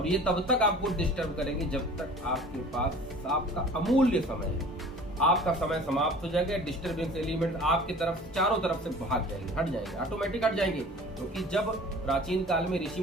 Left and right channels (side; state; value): both; normal; correlation 0.45